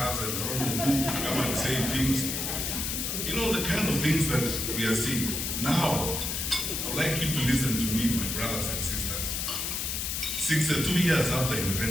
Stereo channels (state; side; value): noise; left; hiss, 1 dB below the sound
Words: and I don't know who come and say things. The kind of things that we are seeing. Now, I would like you to listen to me, my brothers and sisters. 62 years after